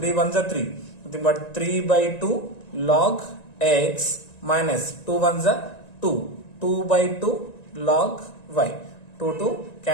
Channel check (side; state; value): right; late; 1.9 ms